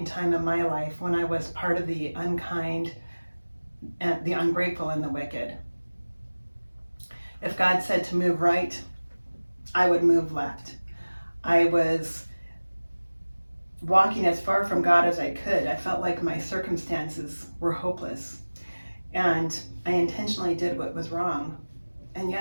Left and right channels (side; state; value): both; inverted; correlation -1.00